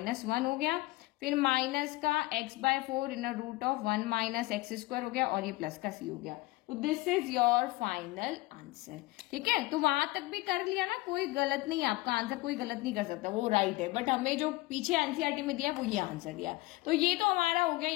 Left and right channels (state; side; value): quieter; right; 20.1 dB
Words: 1 हो गया, फिर माइनस का x/4 in root of 1 minus x square हो गया, और ये प्लस का c हो गया। तो this is your final answer. ठीक है, तो वहां तक भी कर लिया ना, कोई गलत नहीं, आपका आंसर कोई गलत नहीं कर सकता, वो राइट है। बट हमें जो पीछे एनसीईआरटी में दिया वो ये आंसर दिया। तो ये तो हमारा हो गया